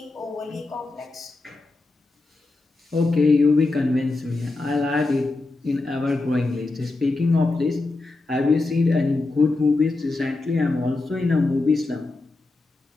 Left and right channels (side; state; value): right; quieter; 3.3 dB